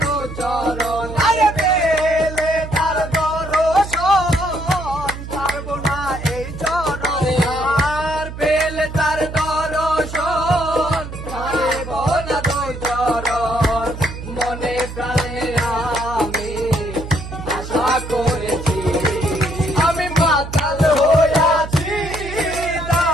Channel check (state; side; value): noise; right; hum, 10 dB below the sound